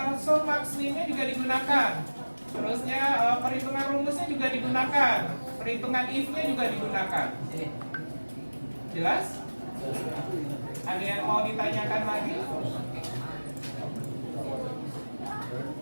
sum max min-nya juga digunakan. Terusnya perhitungan rumusnya juga digunakan. Perhitungan if-nya juga digunakan. Jelas? Ada yang mau ditanyakan lagi?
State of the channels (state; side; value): inverted; both; correlation -1.00